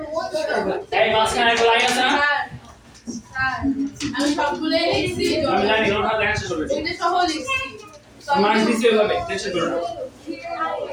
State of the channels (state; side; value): identical; both; correlation 1.00